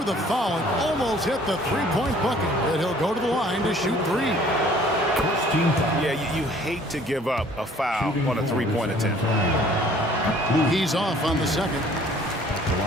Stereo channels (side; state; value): both; normal; correlation 0.55